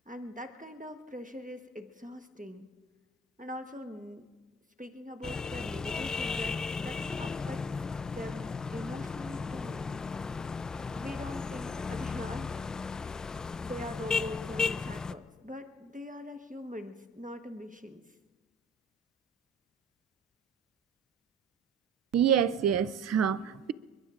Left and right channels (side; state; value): both; normal; correlation 0.50